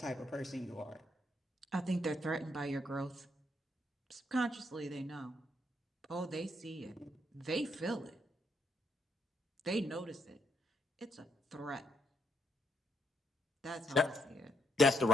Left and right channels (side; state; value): both; normal; correlation 0.76